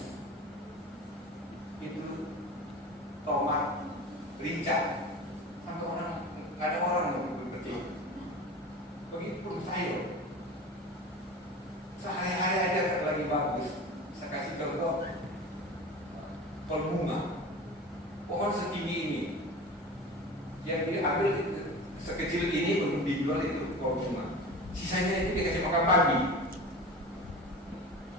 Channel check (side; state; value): both; normal; correlation 0.34